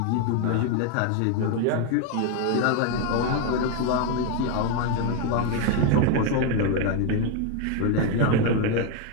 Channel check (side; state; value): both; different; correlation 0.01